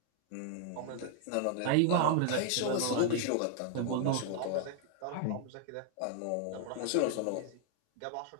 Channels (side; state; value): both; different; correlation 0.00